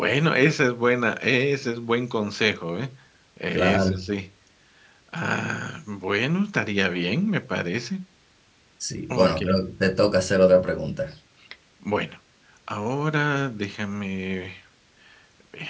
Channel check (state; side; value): identical; both; correlation 1.00